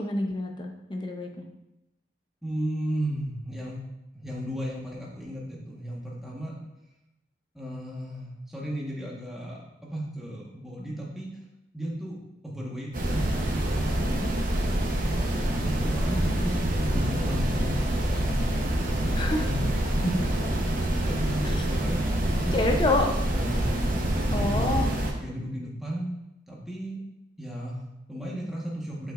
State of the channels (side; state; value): both; normal; correlation 0.79